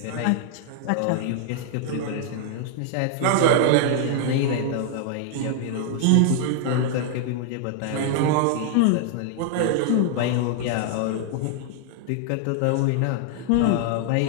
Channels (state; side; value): different; both; correlation 0.00